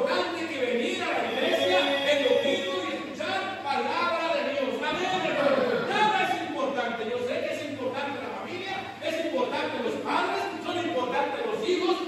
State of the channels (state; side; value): identical; both; correlation 1.00